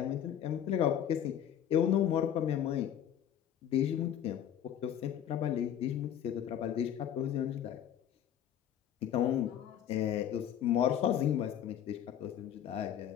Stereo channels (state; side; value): quieter; right; 9.9 dB